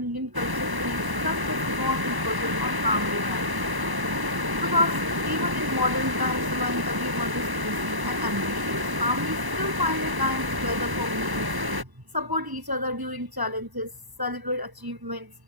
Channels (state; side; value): late; left; 1.0 ms